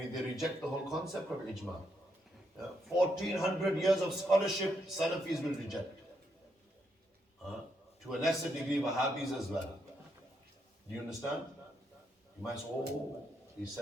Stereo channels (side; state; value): both; normal; correlation 0.79